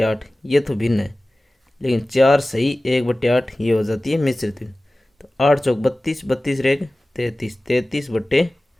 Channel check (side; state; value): both; normal; correlation 0.97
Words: ये तो भिन्न है, लेकिन 4 सही 1/8 ये हो जाती है मिश्रित भिन्न। तो 8 चौक 32, 32 रहेगा 33,